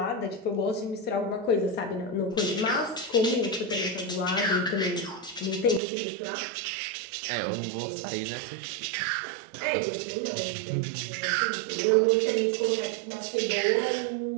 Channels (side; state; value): left; drops out; at 5.8 s